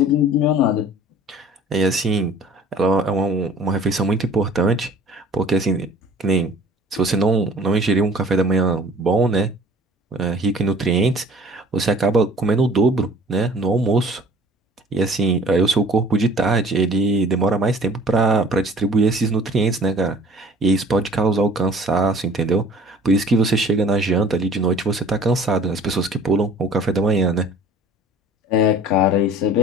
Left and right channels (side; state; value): both; normal; correlation 0.49